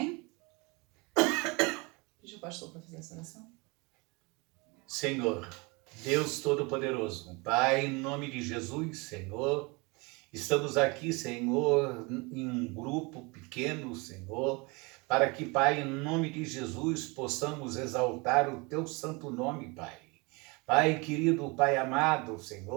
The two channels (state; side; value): quieter; left; 27.7 dB